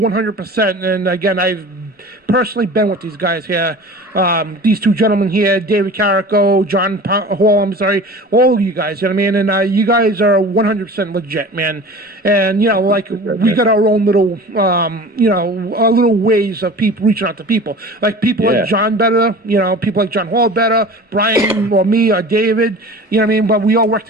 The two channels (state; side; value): normal; both; correlation 0.39